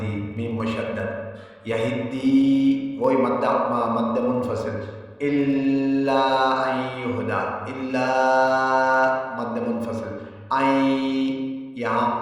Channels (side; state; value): both; identical; correlation 1.00